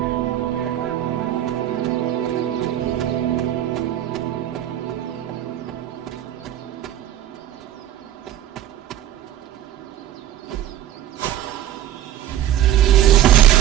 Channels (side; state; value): left; quieter; 12.1 dB